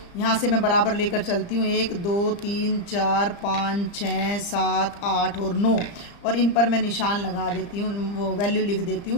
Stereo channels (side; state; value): right; late; 35 ms